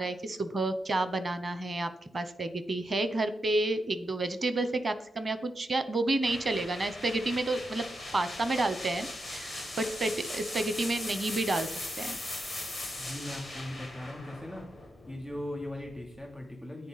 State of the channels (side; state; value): both; normal; correlation 0.86